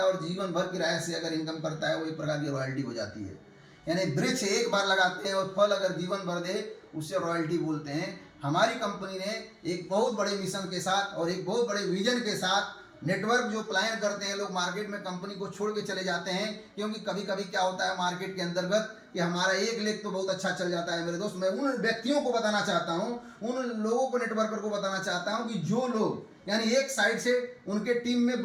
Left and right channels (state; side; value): identical; both; correlation 1.00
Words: और जीवन भर किराए से अगर इनकम करता है, वो एक प्रकार की रॉयल्टी हो जाती है। यानी वृक्ष एक बार लगाते हैं और फल अगर जीवन भर दे, उससे रॉयल्टी बोलते हैं। हमारी कंपनी ने एक बहुत बड़े मिशन के साथ और एक बहुत बड़े विजन के साथ नेटवर्क जो प्लान करते हैं लोग मार्केट में कंपनी को छोड़ के चले जाते हैं, क्योंकि कभी कभी क्या होता है मार्केट के अंतर्गत कि हमारा एक लेग तो बहुत अच्छा चल जाता है। मेरे दोस्त, मैं उन व्यक्तियों को बताना चाहता हूँ, उन लोगों को, नेटवर्कर को बताना चाहता हूँ कि जो लोग यानी एक साइड से उनके टीम में